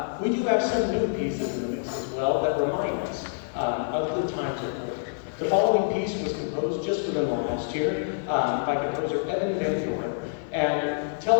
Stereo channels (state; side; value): silent; right; 58 dB below the other